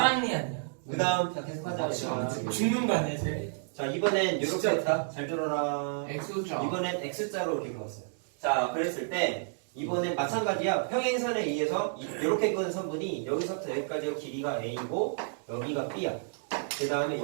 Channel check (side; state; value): left; silent; digital silence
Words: 아니야? 그 다음 자 계속하자. 맞지. 죽는 거 아니야 쟤? 자 이번엔 이렇게 진짜. 했다. 잘 들어라. X자. 이번엔 X자로 이렇게 그었어요. 자 그랬을 때 이번엔 마찬가지야. 평행선에 의해서 이렇게 그은 선분이 여기서부터 여기까지가 길이가 A고 여기가 B야. 그 다음에